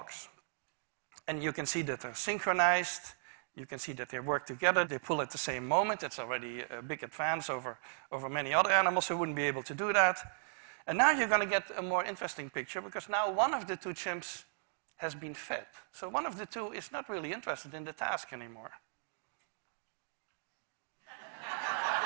And you can see that they're synchronized. You can see that they work together. They pull at the same moment. It's already a big advance over many other animals who wouldn't be able to do that. And now you're going to get a more interesting picture because now one of the two chimps has been fed. So one of the two is not really interested in the task anymore.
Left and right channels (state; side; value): silent; left; digital silence